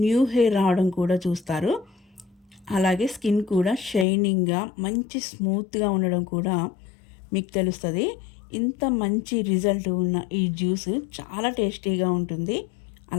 న్యూ హెయిర్ రావడం కూడా చూస్తారు. అలాగే స్కిన్ కూడా షైనింగ్గా మంచి స్మూత్గా ఉండడం కూడా మీకు తెలుస్తుంది. ఇంత మంచి రిజల్ట్ ఉన్న ఈ జ్యూస్ చాలా టేస్టీగా ఉంటుంది.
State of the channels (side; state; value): right; drops out; at 4.0 s